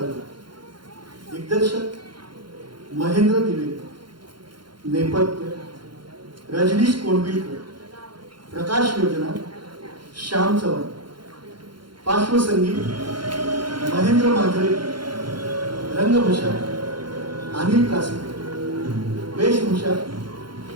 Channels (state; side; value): late; left; 0.72 ms